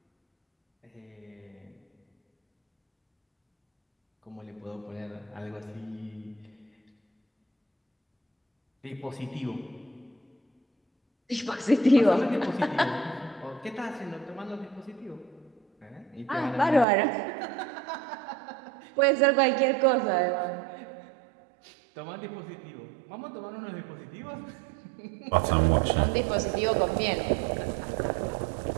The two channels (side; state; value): left; drops out; at 16.9 s